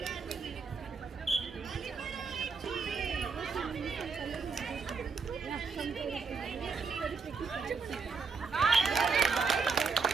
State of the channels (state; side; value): quieter; left; 4.9 dB